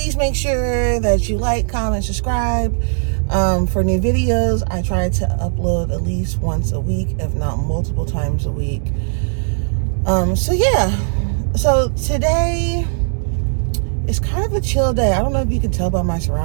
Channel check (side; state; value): left; silent; digital silence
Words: make sure that you like, comment, subscribe. For new videos, I try to upload at least once a week, if not multiple times a week. So today is kind of a chill day. I don't know if you can tell by my